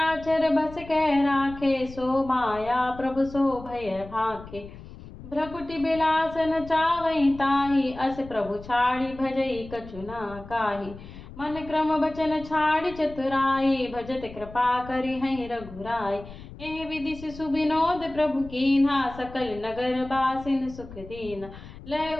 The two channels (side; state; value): left; noise; rumble, 16 dB below the sound